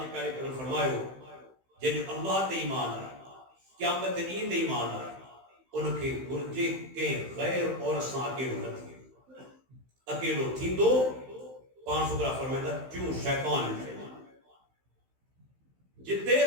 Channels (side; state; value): left; late; 15 ms